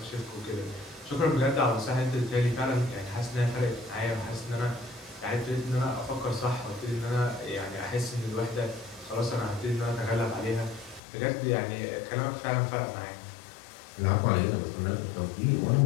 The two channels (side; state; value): right; drops out; at 11.0 s